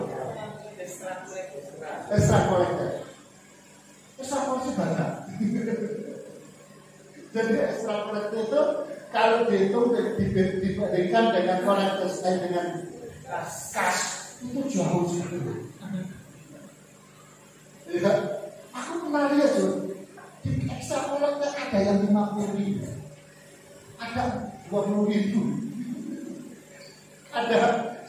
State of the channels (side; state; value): both; identical; correlation 1.00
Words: Extra kolektor. Extra kolektor banyak. Jadi extra kolektor itu kalau dihitung dibandingkan dengan kolektor dengan kas itu jauh sekali. Ya, aku pernah lihat tuh di extra kolektor ada yang 50.000, ada 20.000, ada